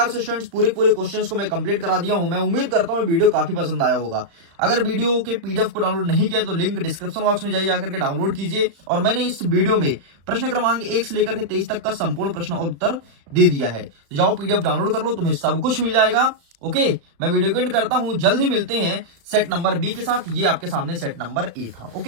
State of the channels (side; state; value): left; late; 35 ms